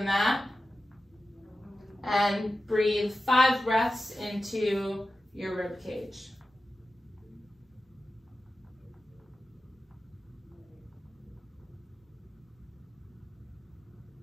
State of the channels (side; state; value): both; normal; correlation 0.93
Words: mat and breathe 5 breaths into your rib cage.